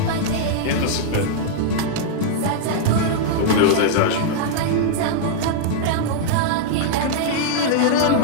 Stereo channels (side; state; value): both; different; correlation -0.01